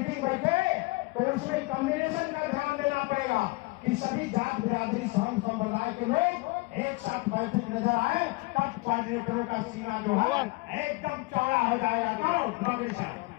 बैठे तो उसमें कम्युनिकेशन का ध्यान देना पड़ेगा कि सभी जात बिरादरी धर्म संप्रदाय के लोग एक साथ बैठे नजर आए, तब कोऑर्डिनेटरों का सीना जो है एकदम चौड़ा हो जाएगा। तो बागड़ी साहब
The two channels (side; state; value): right; quieter; 24.7 dB